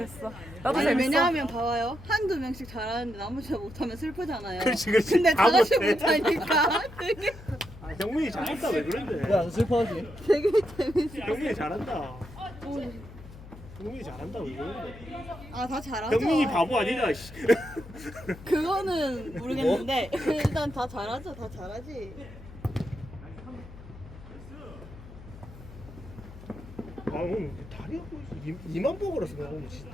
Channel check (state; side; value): noise; left; hum, 16 dB below the sound